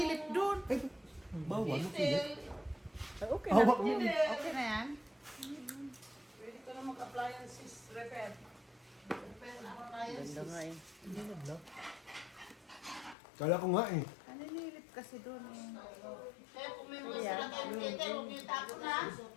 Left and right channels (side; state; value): right; drops out; at 13.2 s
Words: doon? Ay, bawal. Makilit. Ay, okay na. Hawak mo. Okay na yan? Pwede ka na mag-appliances repair. Repair appliances. Hindi na black. Kala ko nga eh. Naninilip kasi doon eh. Kaya kung may mga sila kayo Peter, huwag niyo tapo na.